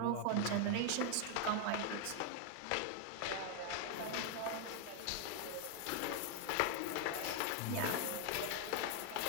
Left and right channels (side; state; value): both; different; correlation 0.00